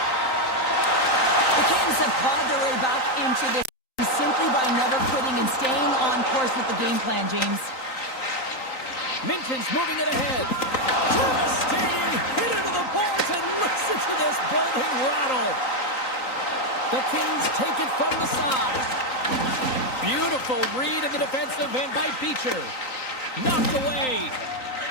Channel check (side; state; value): right; late; 3.9 ms